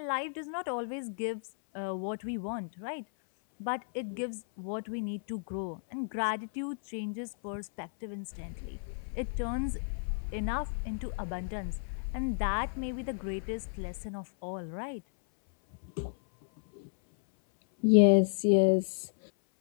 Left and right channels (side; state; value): right; silent; 56 dB below the other